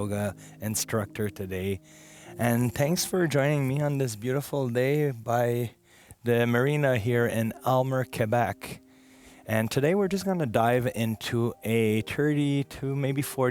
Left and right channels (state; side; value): identical; both; correlation 1.00